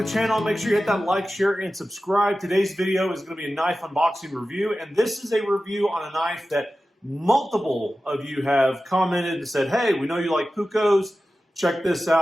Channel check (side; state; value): both; normal; correlation 0.94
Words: the channel. Make sure you hit that like, share, and subscribe. Today's video is going to be a knife unboxing review, and this is a review on a knife that multiple of you have commented and said, hey, we know you like Puukkos, check this